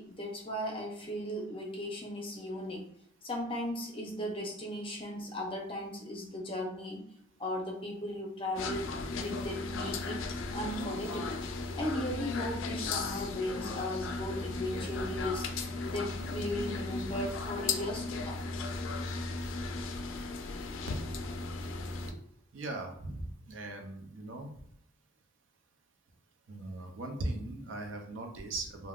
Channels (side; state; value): both; normal; correlation 0.51